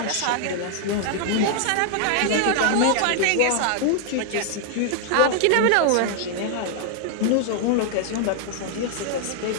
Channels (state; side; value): different; both; correlation 0.00